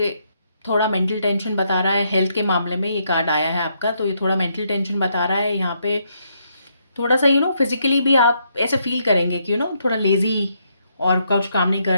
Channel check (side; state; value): both; inverted; correlation -0.75